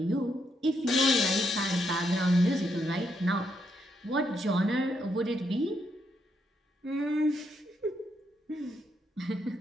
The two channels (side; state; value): both; normal; correlation 0.78